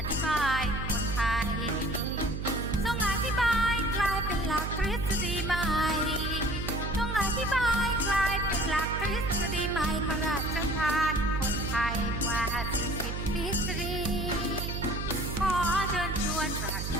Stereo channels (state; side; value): noise; right; hum, 4 dB below the sound